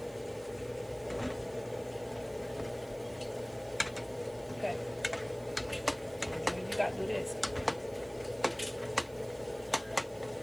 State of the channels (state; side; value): noise; right; hiss, 23 dB below the sound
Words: Okay. You gotta do this.